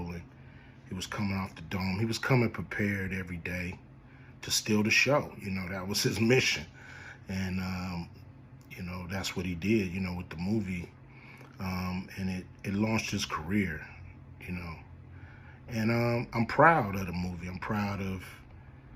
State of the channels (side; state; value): both; identical; correlation 1.00